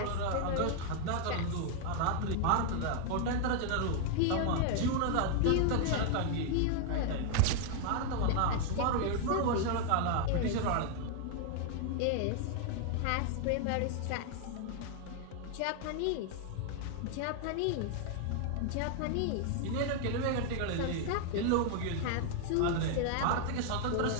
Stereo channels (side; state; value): both; different; correlation 0.00